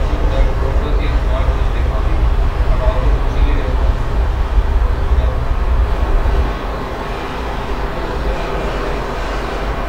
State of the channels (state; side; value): identical; both; correlation 1.00